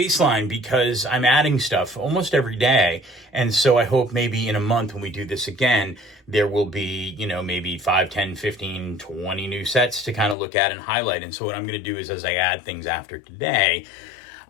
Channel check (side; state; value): right; drops out; at 10.4 s